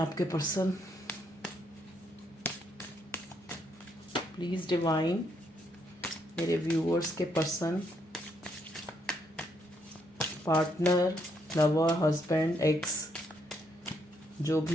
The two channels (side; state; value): both; normal; correlation 0.74